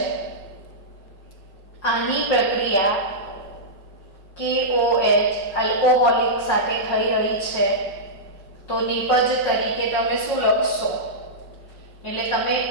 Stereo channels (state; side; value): late; right; 5.3 ms